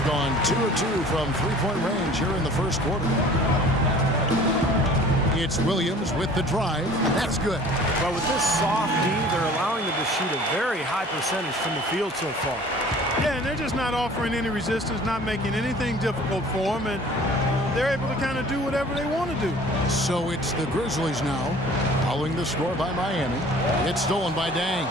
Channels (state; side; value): normal; both; correlation 0.48